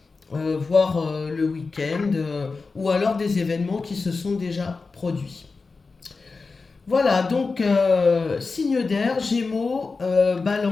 Voire le week-end, ou alors des événements qui se sont déjà produits. Voilà, donc signe d'air, Gémeaux,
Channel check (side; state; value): right; quieter; 4.2 dB